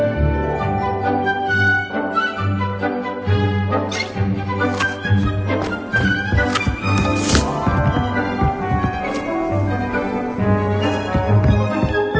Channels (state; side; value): identical; both; correlation 1.00